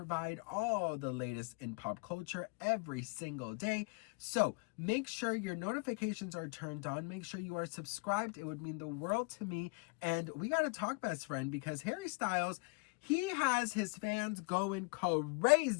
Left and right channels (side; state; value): right; quieter; 31.9 dB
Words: all the latest in pop culture every single day. So make sure your notifications are turned on. Make sure you are subscribed. It would mean the world to me. And we got to talk, best friend, because Harry Styles, he has his fans going